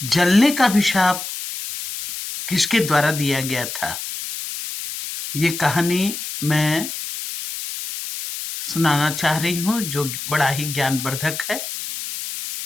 जलने का अभिशाप किसके द्वारा दिया गया था। ये कहानी मैं सुनाना चाह रही हूँ जो बड़ा ही ज्ञानवर्धक है।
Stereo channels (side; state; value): left; noise; hiss, 7 dB below the sound